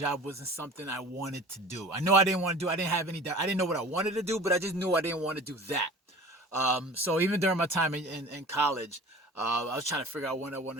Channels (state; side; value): normal; both; correlation 0.41